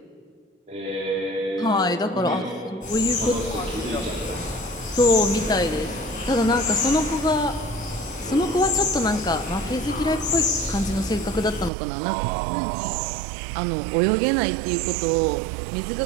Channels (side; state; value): left; drops out; at 11.7 s